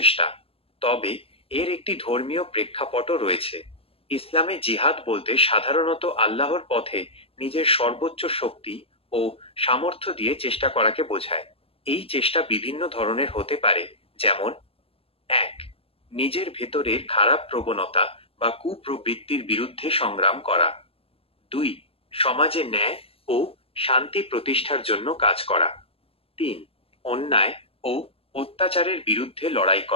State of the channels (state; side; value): late; right; 0.28 ms